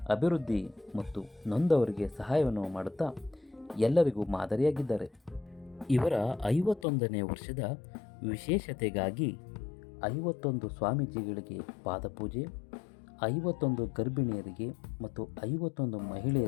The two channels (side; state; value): right; drops out; at 6.9 s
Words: ಅಭಿವೃದ್ಧಿ ಮತ್ತು ನೊಂದವರಿಗೆ ಸಹಾಯವನ್ನು ಮಾಡುತ್ತಾ ಎಲ್ಲರಿಗೂ ಮಾದರಿಯಾಗಿದ್ದಾರೆ. ಇವರ 51ನೇ ವರ್ಷದ ವಿಶೇಷತೆಗಾಗಿ 51 ಸ್ವಾಮೀಜಿಗಳಿಗೆ ಪಾದಪೂಜೆ, 51 ಗರ್ಭಿಣಿಯರಿಗೆ ಮತ್ತು 51